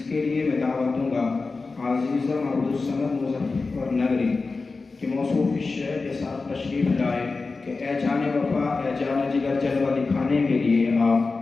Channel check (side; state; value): right; quieter; 4.0 dB